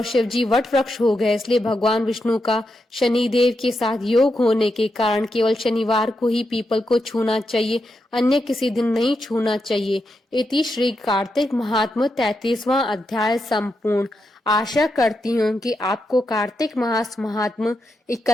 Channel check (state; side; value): normal; both; correlation 0.85